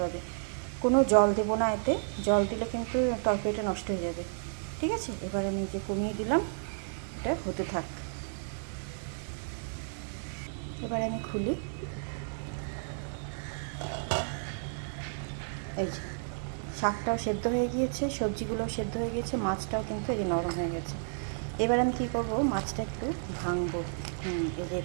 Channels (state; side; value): silent; left; digital silence